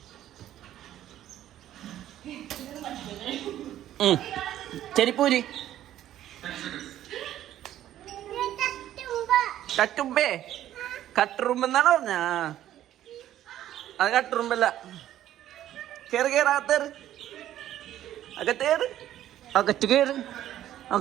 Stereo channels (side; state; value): left; quieter; 12.4 dB